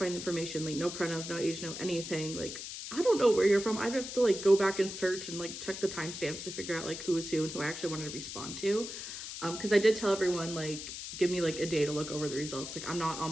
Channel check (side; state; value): left; noise; hiss, 8 dB below the sound